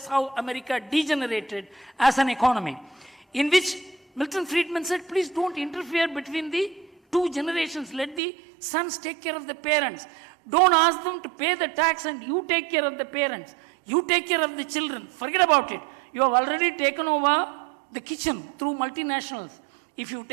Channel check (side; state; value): left; drops out; at 8.2 s